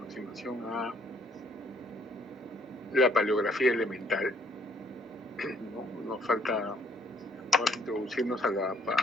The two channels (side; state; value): both; normal; correlation 0.65